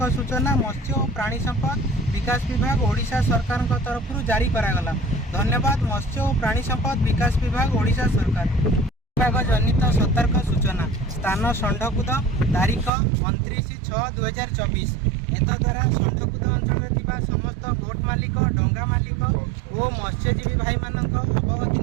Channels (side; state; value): left; drops out; at 12.9 s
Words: सूचना मत्स्य और प्राणी संपद विकास विभाग ओडिशा सरकार तरफ जारी करागला। धन्यवाद। मत्स्य और प्राणी संपद विकास विभाग ओडिशा सरकार। विभाग जनित सतर्क सूचना स्थान षंढकुद तारीख 29/6/2024। एतद्वारा षंढकुद अंचल समस्त बोट मालिक डंगा मालिक और मत्स्यजीवी भाई मानक अवगति